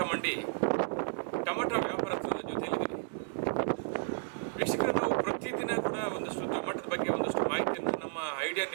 ಮಂಡಿ ಟೊಮಾಟೊ ವ್ಯಾಪಾರಸ್ಥರ ಜೊತೆಯಲ್ಲಿದ್ದೀವಿ. ವೀಕ್ಷಕರೇ, ನಾವು ಪ್ರತಿದಿನ ಕೂಡ ಒಂದಷ್ಟು ಟೊಮಾಟೊದ ಬಗ್ಗೆ ಒಂದಷ್ಟು ಮಾಹಿತಿಯನ್ನು ನಮ್ಮ ಐಡಿಯಾ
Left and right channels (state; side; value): silent; left; digital silence